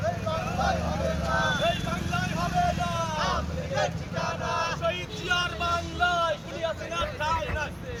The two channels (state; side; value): identical; both; correlation 1.00